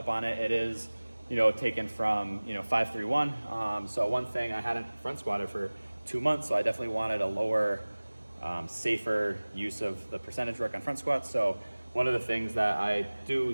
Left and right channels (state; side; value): inverted; both; correlation -1.00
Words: on it. It is, taken from, 531. So one thing, I hadn't front squatted for 2 months, so I definitely wanted a lower, safer use of the percentage work on front squats. So one of the things that I